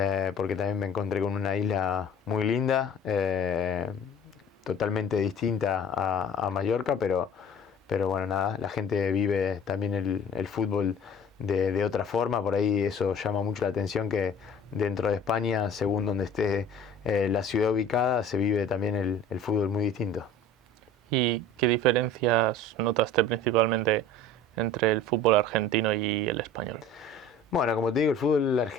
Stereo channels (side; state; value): both; normal; correlation 0.44